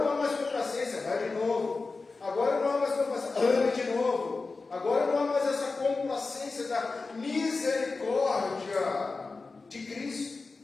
há mais complacência, vai de novo. Agora não há mais complacência, ame de novo. Agora não há mais essa complacência da misericórdia de Cristo,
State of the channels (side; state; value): right; quieter; 3.9 dB